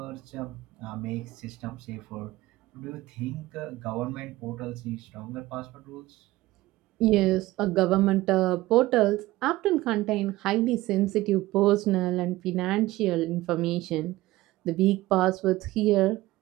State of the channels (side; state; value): left; quieter; 17.8 dB